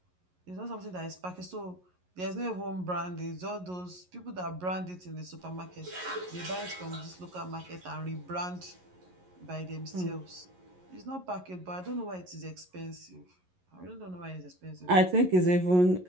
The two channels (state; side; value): late; left; 11 ms